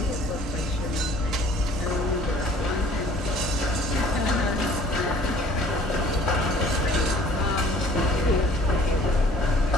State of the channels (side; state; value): both; normal; correlation 0.54